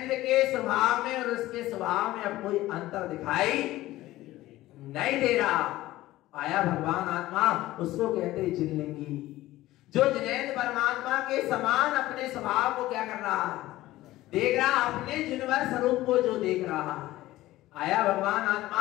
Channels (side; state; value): right; quieter; 16.5 dB